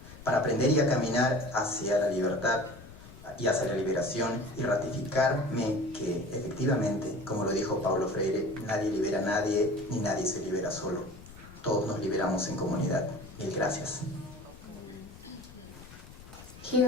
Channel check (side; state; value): left; noise; rumble, 18 dB below the sound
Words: para aprender y a caminar hacia la libertad y hacia la liberación y ratificarme que efectivamente, como lo dijo Paulo Freire, nadie libera a nadie ni nadie se libera solo. Todos nos liberamos en comunidad. Mil gracias.